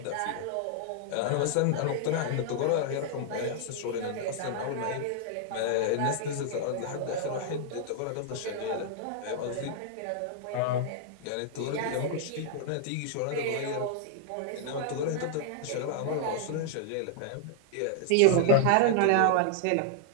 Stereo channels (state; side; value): different; both; correlation -0.01